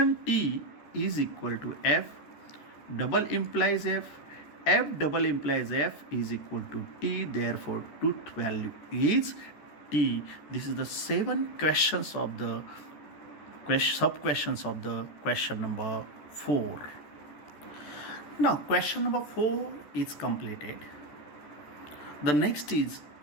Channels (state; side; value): late; right; 13 ms